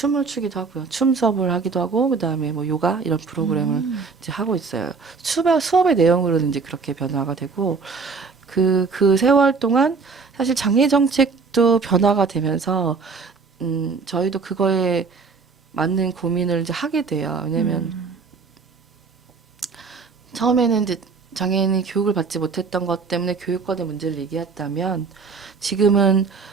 추기도 하고요. 춤 수업을 하기도 하고 그다음에 뭐 요가 이런 프로그램을 이제 하고 있어요. 수업의 내용으로는 이제 그렇게 변화가 되고 그 세월 동안 사실 장애 정책도 변화가 되면서 저희도 그거에 맞는 고민을 이제 하게 돼요. 왜냐면 처음에는 이제 장애인이 교육을 받지 못했던 것 때문에 교육권의 문제를 얘기했다면 지금은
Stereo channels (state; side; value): quieter; left; 4.8 dB